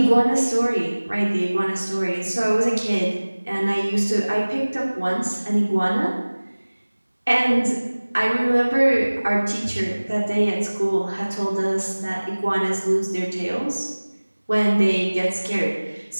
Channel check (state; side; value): inverted; both; correlation -1.00